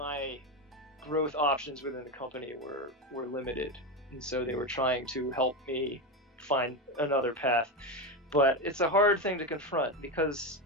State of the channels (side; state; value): both; normal; correlation 0.15